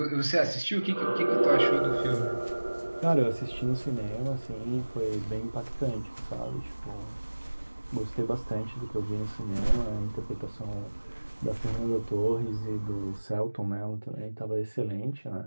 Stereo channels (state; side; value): inverted; both; correlation -1.00